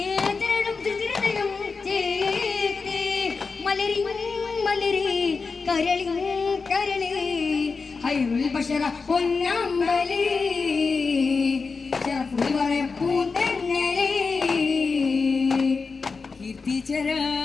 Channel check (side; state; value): right; quieter; 4.6 dB